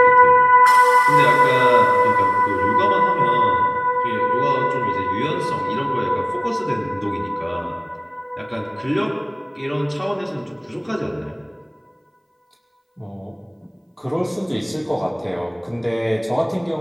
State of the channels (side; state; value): both; identical; correlation 1.00